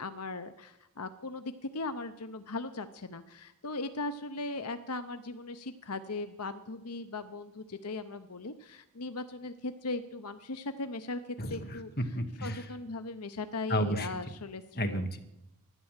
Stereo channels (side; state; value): both; normal; correlation 0.15